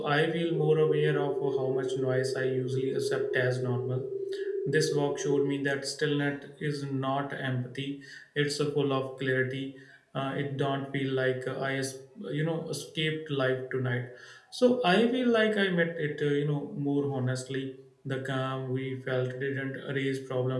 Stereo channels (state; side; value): identical; both; correlation 1.00